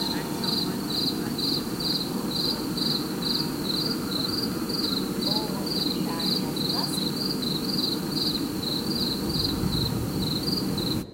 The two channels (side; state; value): both; identical; correlation 1.00